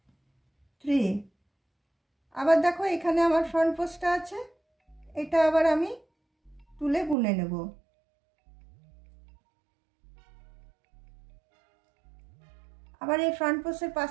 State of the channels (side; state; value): left; drops out; at 7.2 s